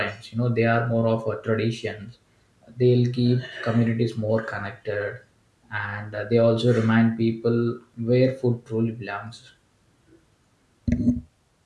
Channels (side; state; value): both; identical; correlation 1.00